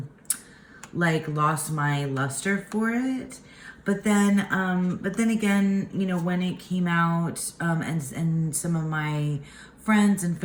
like lost my luster for it. But then again, when it came out, and some of my friends and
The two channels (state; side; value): identical; both; correlation 1.00